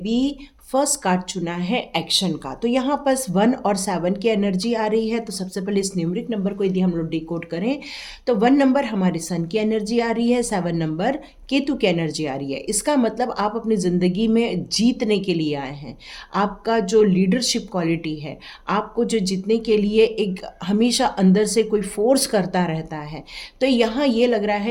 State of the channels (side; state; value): both; identical; correlation 1.00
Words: फर्स्ट कार्ड चुना है एक्शन का। तो यहाँ पर 1 और 7 की एनर्जी आ रही है। तो सबसे पहले इस न्यूमरिक नंबर को यदि हम लोग डिकोड करें तो 1 नंबर हमारे सन की एनर्जी आ रही है, 7 नंबर केतु की एनर्जी आ रही है। इसका मतलब आप अपनी ज़िंदगी में जीतने के लिए आए हैं। आपका जो लीडरशिप क्वालिटी है, आपको जो जीतने के लिए एक हमेशा अंदर से कोई फोर्स करता रहता है, तो यहाँ ये लग रहा